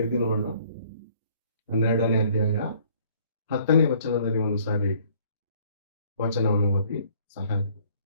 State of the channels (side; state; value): both; inverted; correlation -0.59